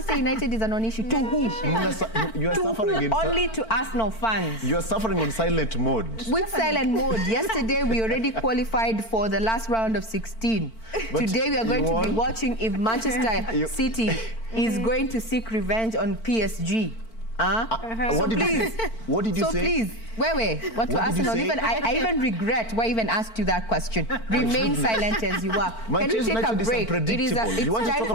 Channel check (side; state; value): right; late; 4.5 ms